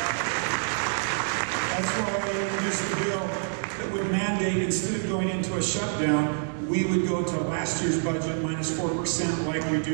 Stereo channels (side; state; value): left; silent; digital silence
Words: That's why I introduced the bill that would mandate, instead of going into a shutdown, we would go to last year's budget minus 4% like we do